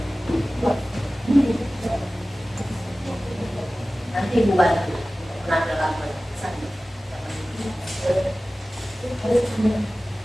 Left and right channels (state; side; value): normal; both; correlation 0.97